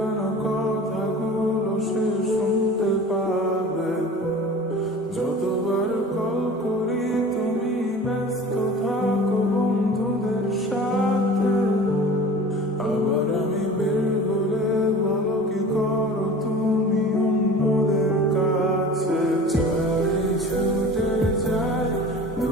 কথাগুলো সে শুনতে পাবে। যতবার কল করি তুমি ব্যস্ত থাকো বন্ধুদের সাথে, আবার আমি বের হলে বলো কি করো তুমি অন্যদের কাছে। চাই ছুটে যাই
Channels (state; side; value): normal; both; correlation 0.40